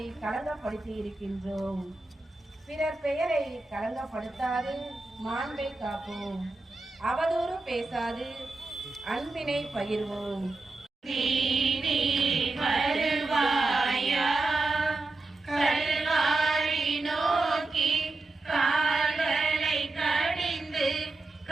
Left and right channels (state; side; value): quieter; left; 3.2 dB